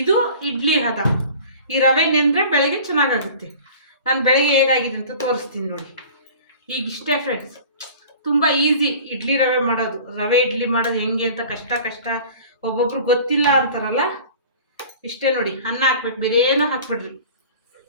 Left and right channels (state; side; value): inverted; both; correlation -0.43